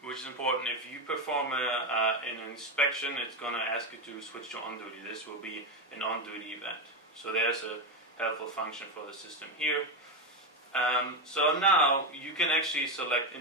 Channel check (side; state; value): both; normal; correlation 0.10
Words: which is important, if you perform an inspection, it's going to ask you to switch to on duty. This will be an on duty event. So there's a helpful function for the system here. So now you can actually select